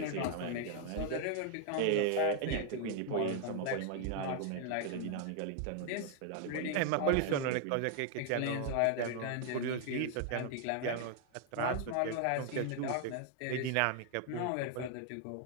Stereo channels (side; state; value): both; different; correlation 0.00